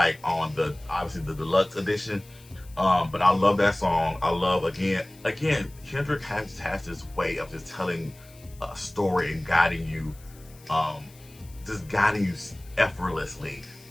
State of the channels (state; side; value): noise; left; hiss, 25 dB below the sound